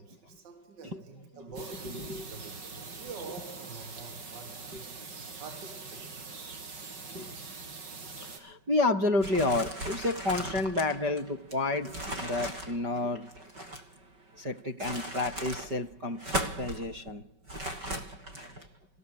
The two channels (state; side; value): late; left; 5.3 ms